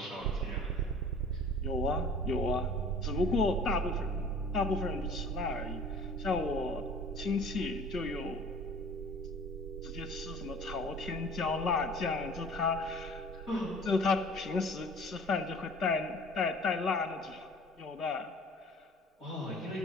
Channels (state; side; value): normal; both; correlation 0.47